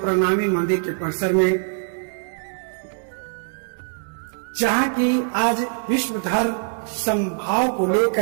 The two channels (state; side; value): silent; left; digital silence